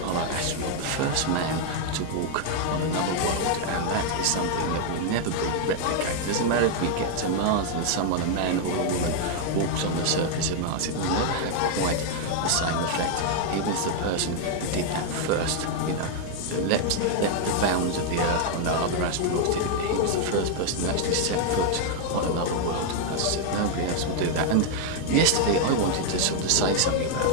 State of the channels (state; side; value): different; both; correlation 0.00